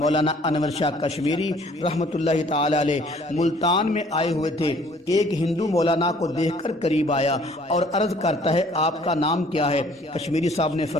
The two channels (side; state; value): both; normal; correlation 0.57